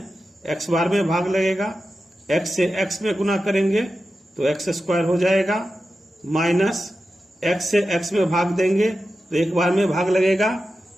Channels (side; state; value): both; normal; correlation 0.92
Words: x बार में भाग लगेगा। x से x में गुना करेंगे तो x² हो जाएगा। माइनस x से x में भाग देंगे तो 1 बार में भाग लगेगा।